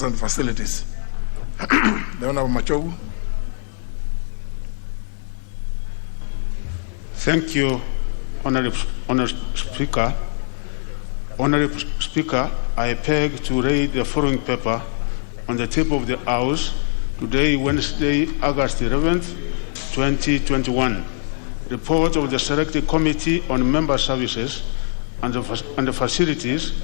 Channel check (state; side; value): silent; right; digital silence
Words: and Facilities. The Honorable Machogu. Thank you, Honorable Speaker. Honorable Speaker, I beg to read the following paper on the table of the House today, Wednesday, August 11th, 2021. Report of the Selected Committee on Member Services and the Facilities